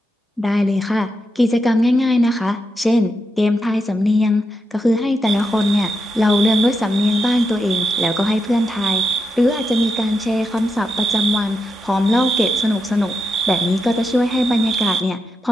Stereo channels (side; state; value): both; normal; correlation 0.85